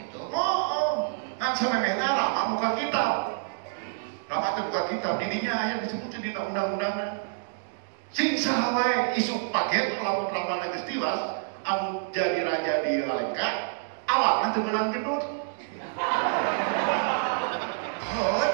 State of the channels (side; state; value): left; silent; digital silence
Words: Oh. Kan samemehna Rama bukan kitab. Rama teh bukan kitab, di dinya aya disebutkeun dina undang-undangna. Sing saha wae isuk paget lamun Ramana geus tiwas, anu jadi raja di Alengka, awakna teu meunang gendut. Oh,